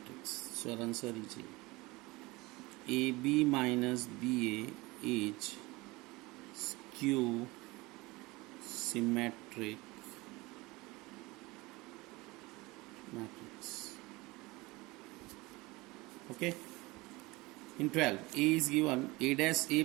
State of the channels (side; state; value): left; quieter; 22.4 dB